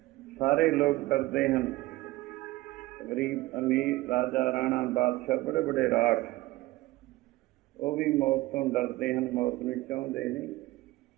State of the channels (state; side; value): quieter; left; 18.7 dB